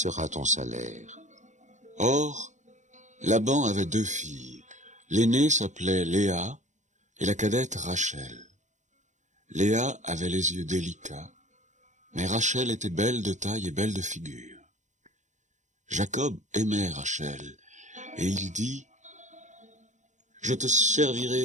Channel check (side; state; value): left; late; 0.35 ms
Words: ton salaire. » Or, Laban avait 2 filles. L'aînée s'appelait Léa et la cadette Rachel. Léa avait les yeux délicats, mais Rachel était belle de taille et belle de figure. Jacob aimait Rachel, et il dit, « Je te